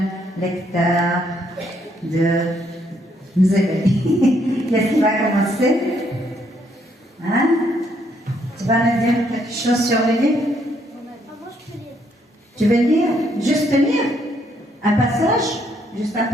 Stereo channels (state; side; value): normal; both; correlation 0.71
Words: lecteur de Mzébéli. Qu'est-ce qui va commencer? Hein? Tu vas nous dire quelque chose sur le livre? Moi, je peux lire. Tu veux lire? Juste lire? Un passage? Juste un